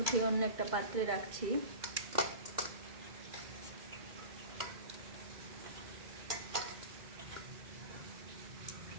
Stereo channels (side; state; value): left; late; 2.1 ms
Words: অন্য একটা পাত্রে রাখছি।